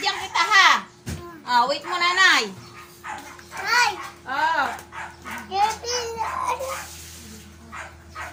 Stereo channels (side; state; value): both; identical; correlation 1.00